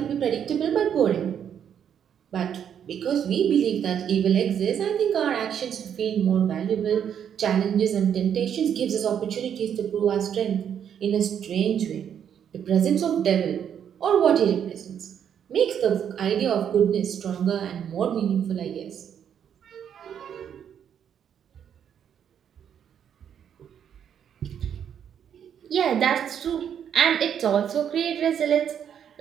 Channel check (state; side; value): quieter; left; 8.7 dB